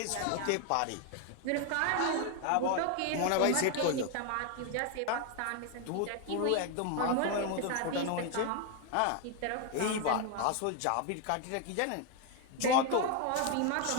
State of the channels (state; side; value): different; both; correlation 0.01